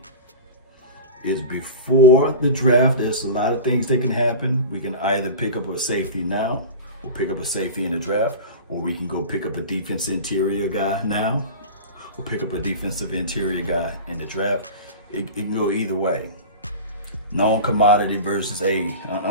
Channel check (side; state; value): both; inverted; correlation -0.31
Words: is before the draft. There's a lot of things that can happen. We can either pick up a safety now, or pick up a safety in the draft, or we can go pick up a defense interior guy now, or pick up a defensive interior guy in the draft. It can go either way. Known commodity versus an